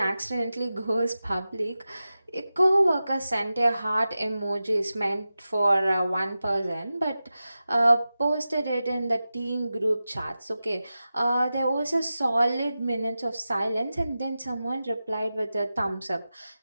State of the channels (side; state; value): both; inverted; correlation -0.93